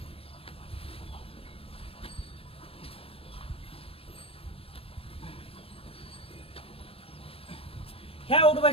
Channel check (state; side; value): late; right; 0.27 ms